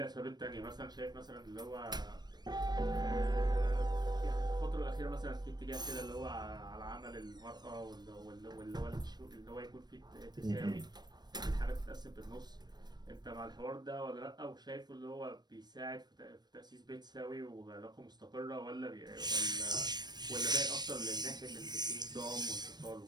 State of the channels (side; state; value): left; late; 0.20 ms